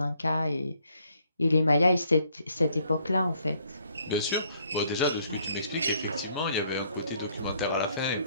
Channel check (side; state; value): both; inverted; correlation -0.67